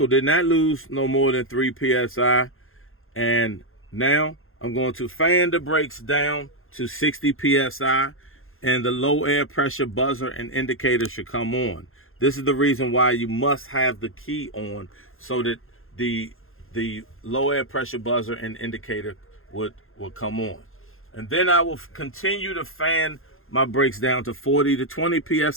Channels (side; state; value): right; late; 0.60 ms